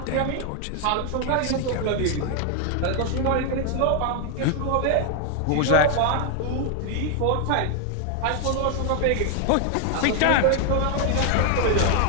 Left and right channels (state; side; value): different; both; correlation 0.00